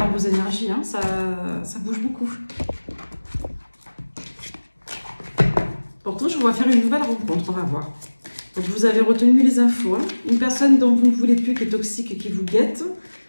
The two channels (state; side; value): inverted; both; correlation -1.00